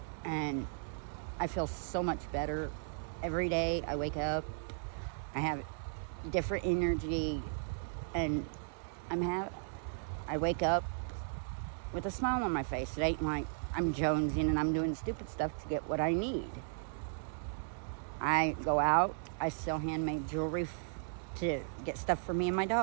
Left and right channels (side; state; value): left; silent; 54 dB below the other